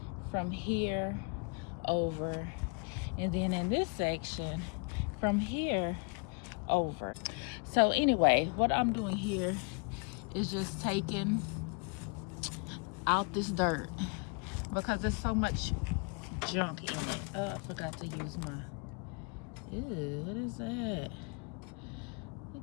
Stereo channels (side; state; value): right; quieter; 35.4 dB